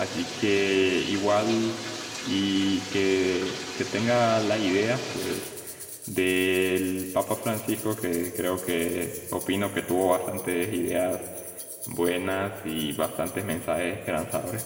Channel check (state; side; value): identical; both; correlation 1.00